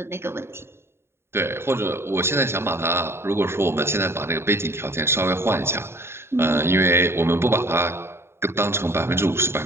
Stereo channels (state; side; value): late; left; 0.12 ms